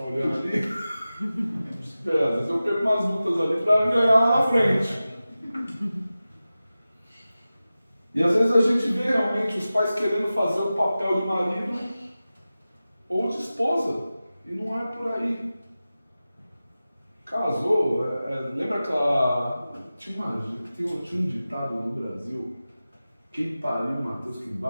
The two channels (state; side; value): inverted; both; correlation -0.95